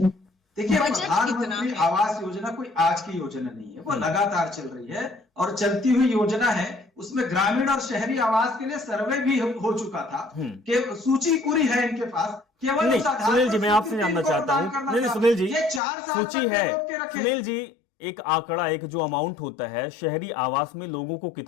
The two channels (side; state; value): right; drops out; at 15.8 s